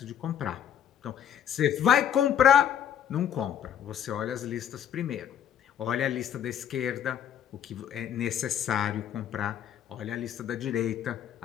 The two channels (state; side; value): quieter; right; 9.4 dB